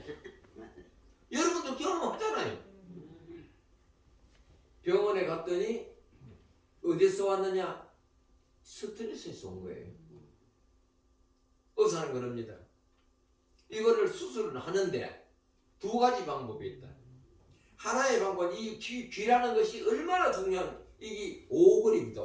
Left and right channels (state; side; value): identical; both; correlation 1.00